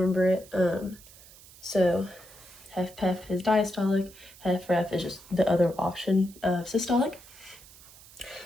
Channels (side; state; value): right; noise; hiss, 21 dB below the sound